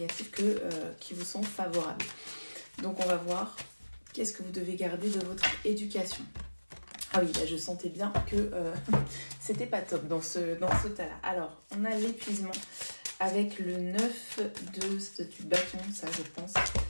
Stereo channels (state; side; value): inverted; both; correlation -1.00